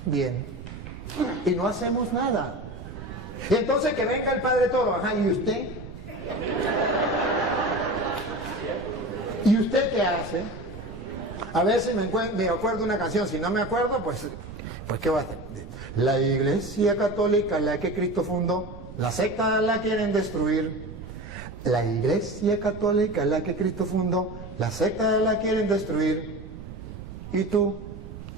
bien, y no hacemos nada. Y entonces que venga el Padre Toro, ajá, ¿y usted? ¿Y usted qué hace? A ver si me acuerdo una canción, si no me acuerdo, pues ¿qué va a hacer? La Iglesia Católica, la que Cristo fundó, la secta la quieren destruir. La Iglesia Católica, la que Cristo fundó, la secta la quieren destruir. ¿Y tú?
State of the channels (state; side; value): noise; right; rumble, 13 dB below the sound